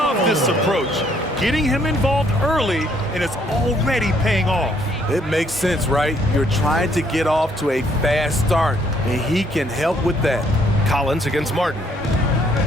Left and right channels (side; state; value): both; normal; correlation 0.67